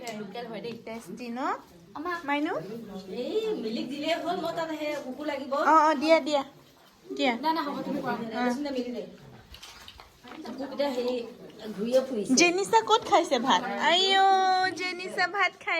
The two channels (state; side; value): identical; both; correlation 1.00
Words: টেষ্টি ন মাইনু অ দিয়া দিয়া দিয়া জেনিছা ক'ত খাইছে ভাত আইও জেনিছা ভাত